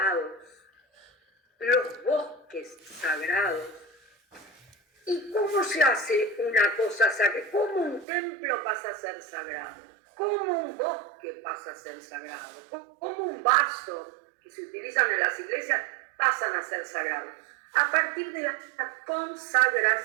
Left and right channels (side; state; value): left; drops out; at 8.1 s